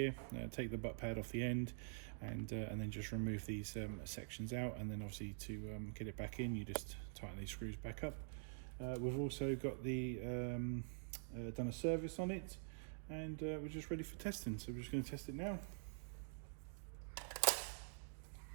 take the butt pad off the end, and then just remove these sections out, and then obviously to get it back in, you just tighten these screws back up. We've also got the done a service on it, and we're just ready for testing, so we're just going to test it now.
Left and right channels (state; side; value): silent; left; digital silence